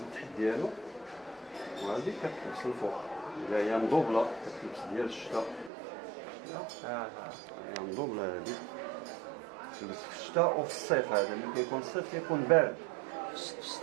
التحت ديالو، وهذه كتلبس الفوق اللي هي مدوبله كتلبس ديال الشتاء. هي مدوبله هذه تلبس في الشتاء وفي الصيف. هذا ملي كيكون الصيف كيكون بارد في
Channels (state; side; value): drops out; left; at 5.7 s